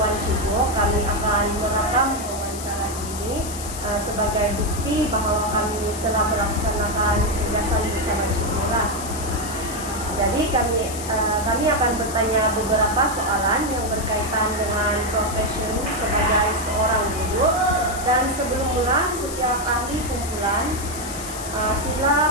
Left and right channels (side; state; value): left; noise; hiss, 10 dB below the sound